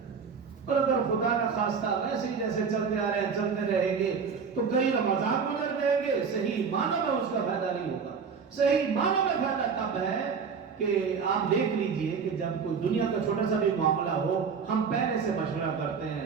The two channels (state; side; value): quieter; left; 5.9 dB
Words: اور اگر خدا نہ خواستہ ویسے ہی جیسے چلتے آ رہے ہیں چلتے رہیں گے تو کئی رمضان گزر جائیں گے، صحیح معنوں میں اس کا فائدہ نہیں ہوگا۔ صحیح معنوں میں فائدہ تب ہے کہ آپ دیکھ لیجئے کہ جب کوئی دنیا کا چھوٹا سا بھی معاملہ ہو، ہم پہلے سے مشورہ کرتے